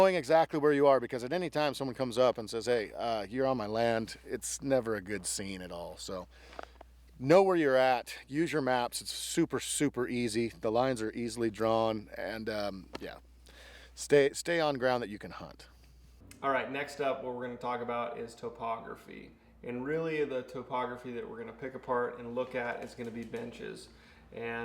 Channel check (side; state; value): both; identical; correlation 1.00